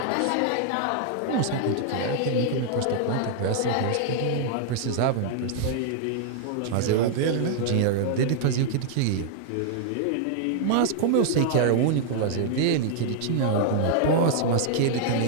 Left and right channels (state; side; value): different; both; correlation -0.01